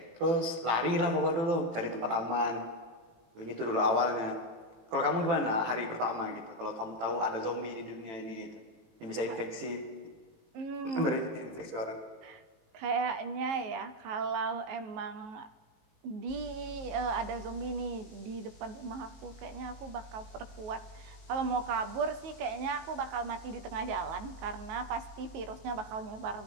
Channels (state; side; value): late; left; 18 ms